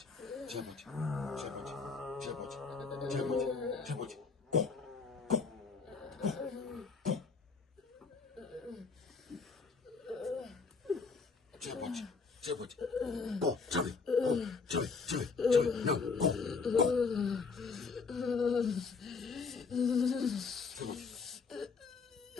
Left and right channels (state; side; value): quieter; right; 4.8 dB